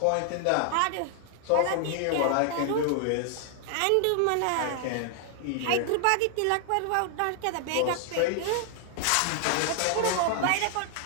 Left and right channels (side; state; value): both; different; correlation 0.00